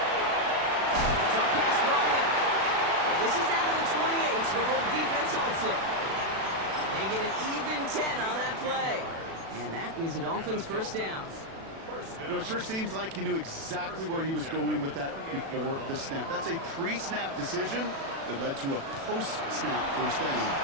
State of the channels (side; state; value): left; late; 36 ms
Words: Short pass brought in. And this is down to the 28 before the defense halts it. They get an even 10 on that play. And that is a Dolphins first down. You know, it sure seems like he knew exactly where he was going with that before the snap. That's a pre-snap decision that led to a post-snap first down.